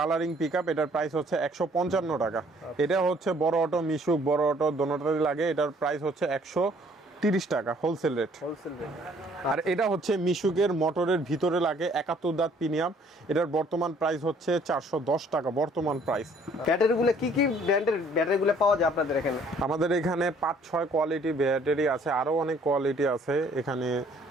পিক আপ, এটার প্রাইস হচ্ছে 155 টাকা। এটা হচ্ছে বড় অটো, মিশুক, বড় অটো দোনোটাই লাগে, এটার প্রাইস হচ্ছে 30 টাকা হোলসেল রেট। Wholesale rate. আর এটা হচ্ছে মিশুকের মোটরের ভিতরে লাগে 71 দাঁত প্রিমিয়াম, এটার বর্তমান প্রাইস হচ্ছে 410 টাকা বর্তমান প্রাইস। ব্যাটারিগুলো কি কি ব্র্যান্ডের ব্যাটারিগুলো পাওয়া যায় আপনাদের এখানে? আমাদের এখানে 5-6 কোয়ালিটি ব্যাটারি আছে, আরো অনেক কোয়ালিটি আছে, এখানে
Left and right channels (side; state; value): both; normal; correlation 0.60